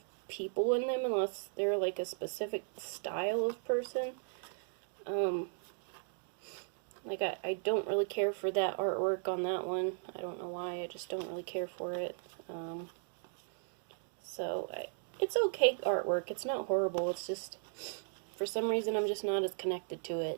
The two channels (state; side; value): silent; left; digital silence